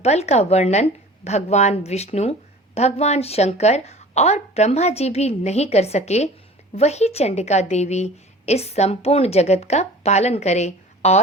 बल का वर्णन भगवान विष्णु, भगवान शंकर और ब्रह्मा जी भी नहीं कर सके, वही चंडिका देवी इस संपूर्ण जगत का पालन करे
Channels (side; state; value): both; normal; correlation 0.42